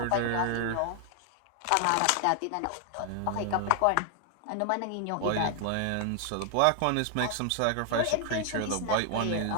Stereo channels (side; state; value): both; different; correlation 0.00